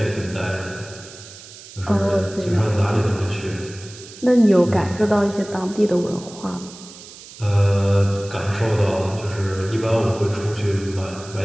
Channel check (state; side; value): noise; right; hiss, 17 dB below the sound